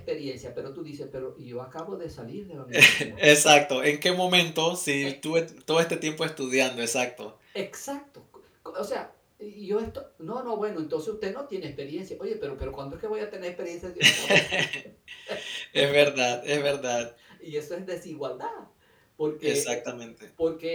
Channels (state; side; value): identical; both; correlation 1.00